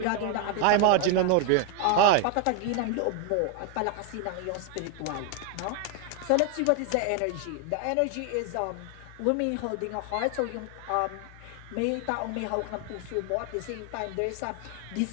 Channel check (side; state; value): both; different; correlation 0.00